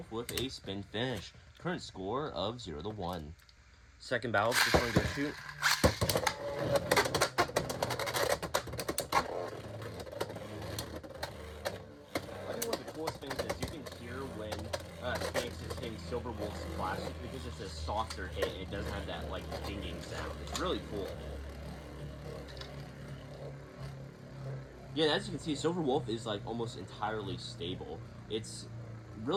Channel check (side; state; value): both; identical; correlation 1.00